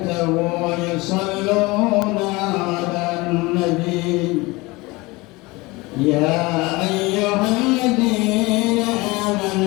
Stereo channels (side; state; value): right; quieter; 23.0 dB